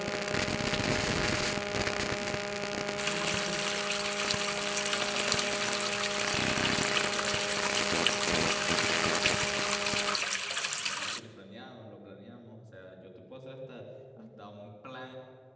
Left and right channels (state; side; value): identical; both; correlation 1.00